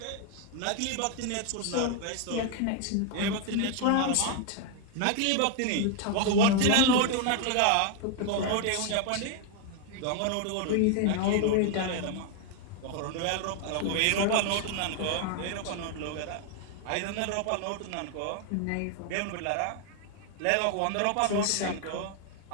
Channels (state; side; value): different; both; correlation 0.01